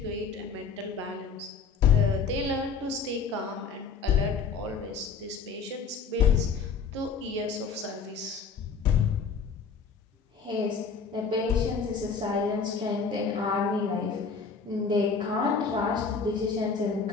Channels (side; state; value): right; quieter; 5.4 dB